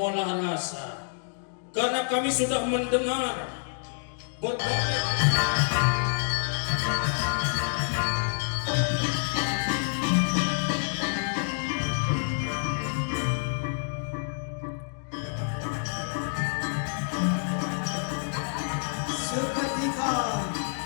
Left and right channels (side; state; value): right; silent; 59 dB below the other